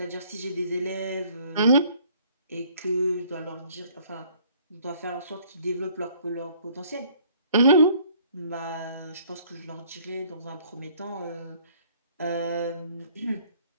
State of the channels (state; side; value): inverted; both; correlation -0.58